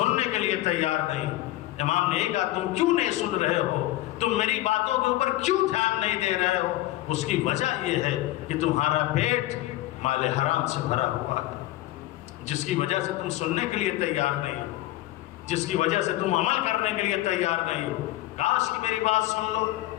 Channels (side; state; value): right; quieter; 16.4 dB